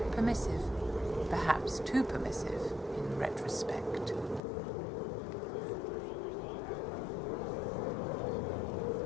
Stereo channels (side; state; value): right; drops out; at 4.4 s